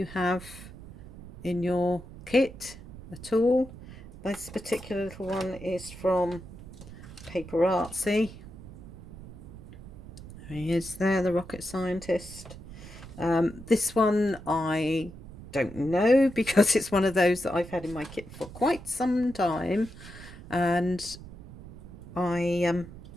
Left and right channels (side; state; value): right; noise; rumble, 15 dB below the sound